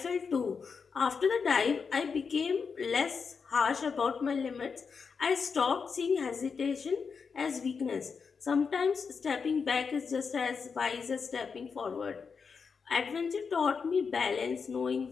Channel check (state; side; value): quieter; right; 5.6 dB